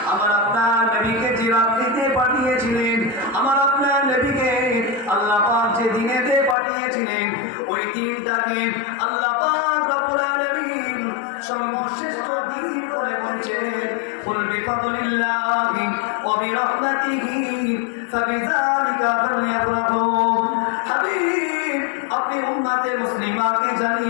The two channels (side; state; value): right; drops out; at 6.6 s